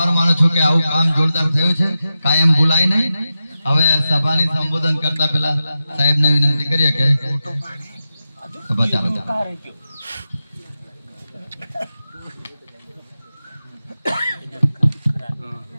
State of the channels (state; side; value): inverted; both; correlation -0.91